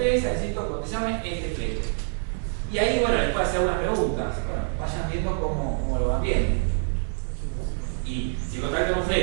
necesito que te llamen este flete. Y ahí, bueno, les puedo hacer algunas preguntas. Bueno, vayan viendo cómo lo van viendo. Y si contactan un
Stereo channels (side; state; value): left; silent; digital silence